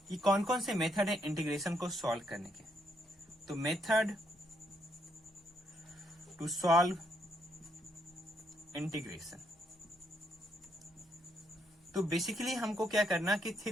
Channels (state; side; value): normal; both; correlation 0.74